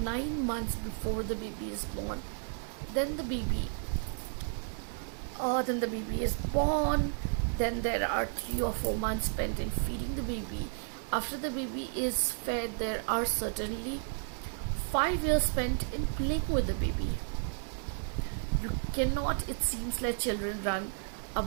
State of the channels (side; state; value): left; silent; 56 dB below the other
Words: months before the baby is born. Then then the baby is born. Then there are 3 or 4 months spent in feeding the baby. After the baby is fed, there are certainly 5 years spent in playing with the baby. You cannot, it seems, let children run